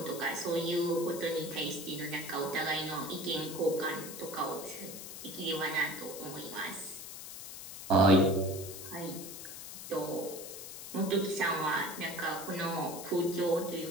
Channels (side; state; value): left; noise; hiss, 10 dB below the sound